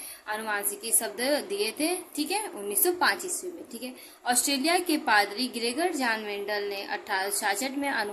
आनुवांशिकी शब्द दिए थे। ठीक है, 1905 ईस्वी में। ठीक है, ऑस्ट्रेलिया के पादरी ग्रेगर जॉन मेंडल ने 1866 में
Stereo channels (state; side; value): identical; both; correlation 1.00